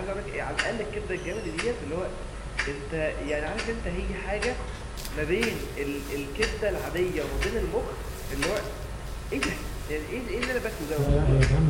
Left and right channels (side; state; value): both; identical; correlation 1.00